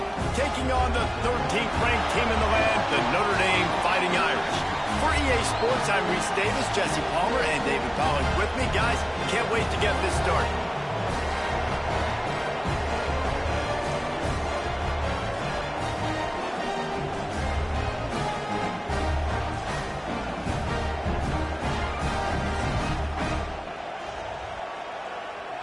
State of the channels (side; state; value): both; identical; correlation 1.00